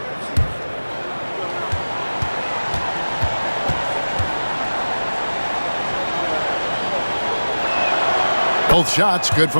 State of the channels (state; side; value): inverted; both; correlation -1.00